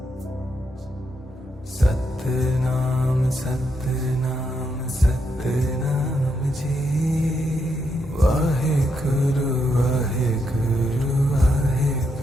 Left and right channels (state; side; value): normal; both; correlation 0.80